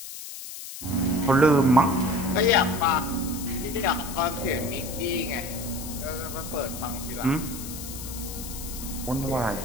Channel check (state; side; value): noise; left; hiss, 10 dB below the sound